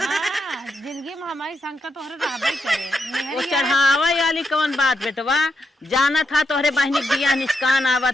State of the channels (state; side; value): normal; both; correlation 0.82